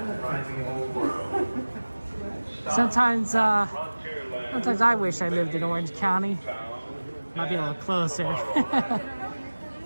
Sometimes I wish I lived in Orange County. Might be a little closer.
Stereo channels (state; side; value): inverted; both; correlation -1.00